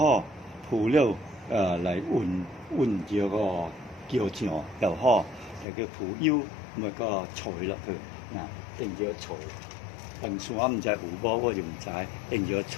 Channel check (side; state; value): right; drops out; at 5.7 s